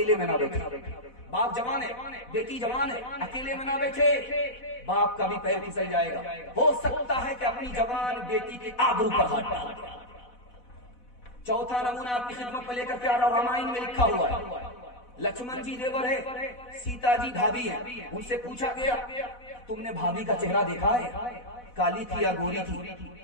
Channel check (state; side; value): late; right; 4.1 ms